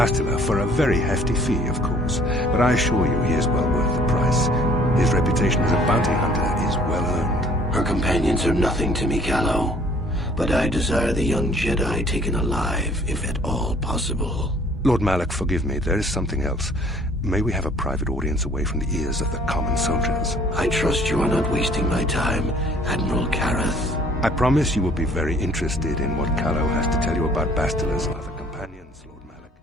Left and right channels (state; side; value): normal; both; correlation 0.56